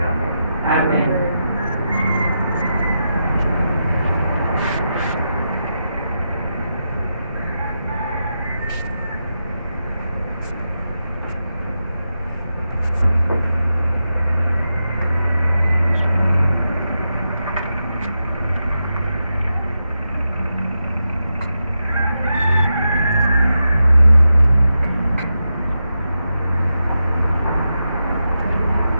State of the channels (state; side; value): inverted; both; correlation -0.87